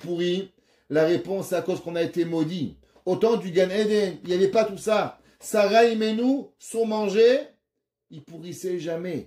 La réponse, c'est à cause qu'on a été maudit. Au temps du Gan Eden, il n'y avait pas tout ça. Sarah Imenu, son manger, il pourrissait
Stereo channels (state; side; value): identical; both; correlation 1.00